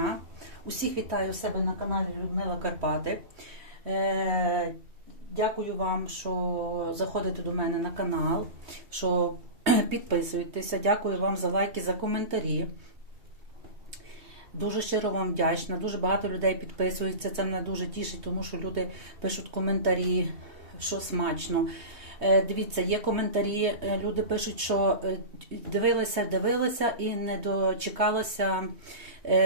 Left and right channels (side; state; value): left; late; 3.2 ms